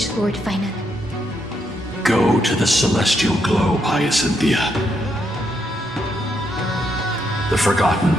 Lord Finan. Go to the celestial globe, Hyacinthia. The forgotten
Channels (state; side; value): normal; both; correlation 0.77